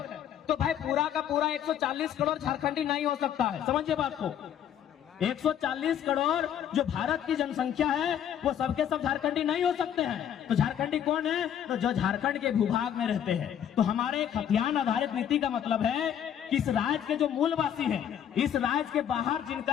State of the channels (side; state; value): right; quieter; 9.6 dB